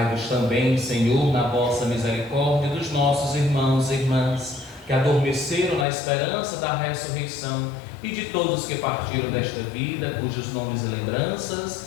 também, Senhor, na vossa misericórdia, dos nossos irmãos e irmãs, que adormeceram na esperança da ressurreição, e de todos que partiram desta vida, cujos nomes e lembranças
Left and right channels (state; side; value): drops out; right; at 5.9 s